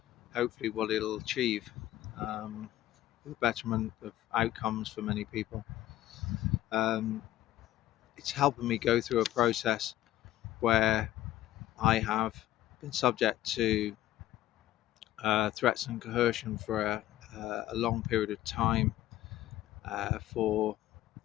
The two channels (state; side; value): quieter; right; 14.4 dB